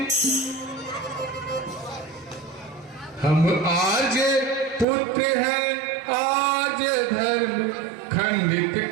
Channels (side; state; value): left; drops out; at 4.9 s